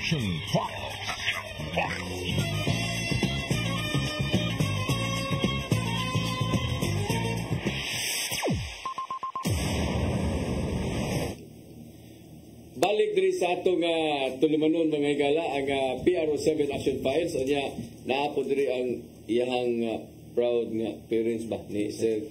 Files. Balik diri sa atong tulumanon mga higala ang PRO7 Action Files o niya naapod diri ang iyang proud nga parents ba ni Sir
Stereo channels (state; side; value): identical; both; correlation 1.00